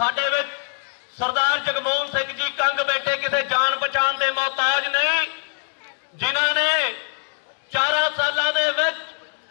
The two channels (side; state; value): right; silent; 58 dB below the other